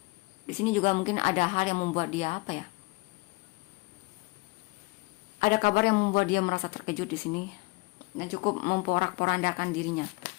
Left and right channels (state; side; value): quieter; right; 24.0 dB